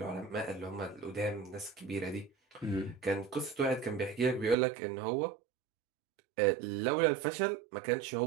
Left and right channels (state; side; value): drops out; left; at 4.5 s